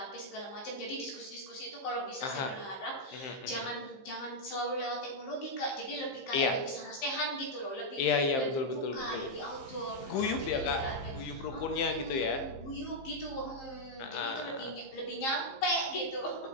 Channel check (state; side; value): late; right; 15 ms